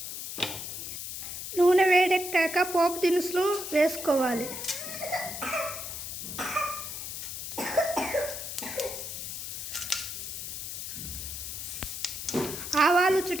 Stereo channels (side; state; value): left; noise; hiss, 6 dB below the sound